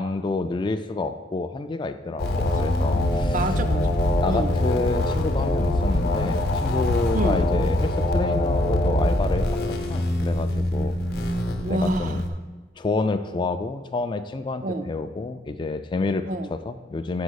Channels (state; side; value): normal; both; correlation 0.70